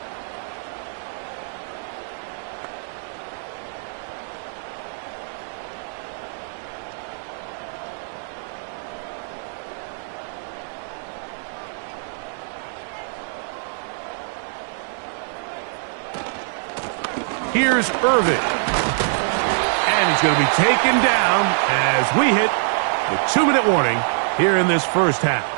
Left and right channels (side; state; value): left; silent; 61 dB below the other